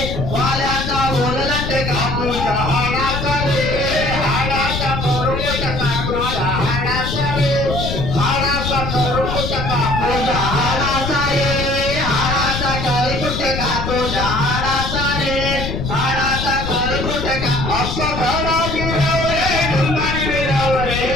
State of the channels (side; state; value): left; noise; rumble, 4 dB below the sound